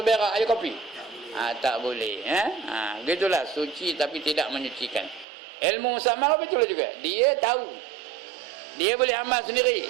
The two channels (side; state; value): left; drops out; at 5.2 s